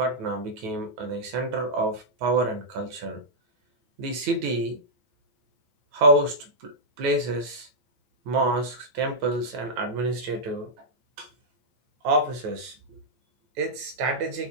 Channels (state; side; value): late; left; 9.3 ms